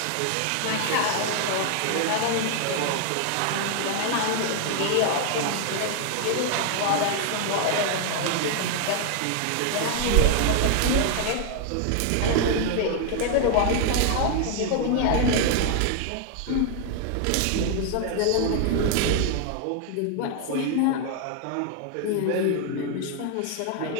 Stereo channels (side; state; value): both; different; correlation 0.00